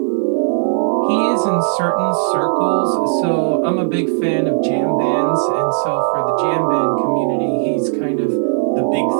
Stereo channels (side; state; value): left; silent; digital silence